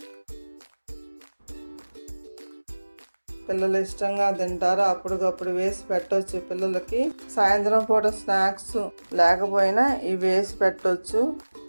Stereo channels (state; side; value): inverted; both; correlation -1.00